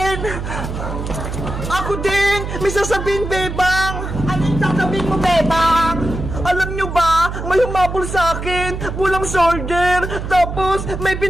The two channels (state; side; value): noise; right; hum, 6 dB below the sound